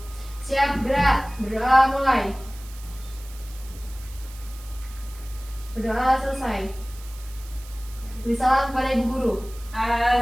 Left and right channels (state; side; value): noise; right; hiss, 19 dB below the sound